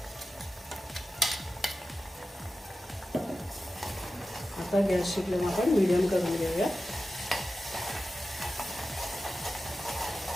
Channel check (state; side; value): normal; both; correlation 0.93